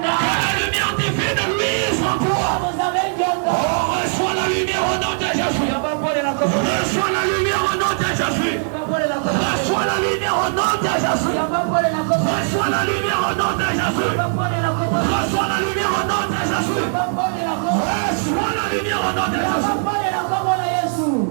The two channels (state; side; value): silent; left; 63 dB below the other